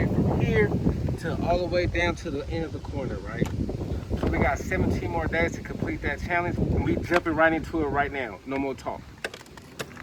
from here to all the way down to the end of the corner, right? So we got 17 more days to complete that challenge, and we jumping right into it right now. No more talk.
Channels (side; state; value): both; identical; correlation 1.00